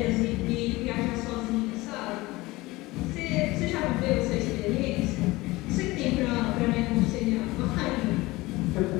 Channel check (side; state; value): right; quieter; 20.6 dB